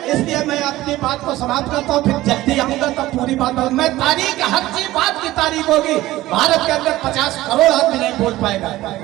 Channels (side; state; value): left; quieter; 16.6 dB